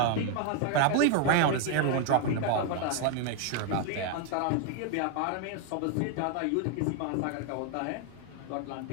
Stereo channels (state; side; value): different; both; correlation 0.00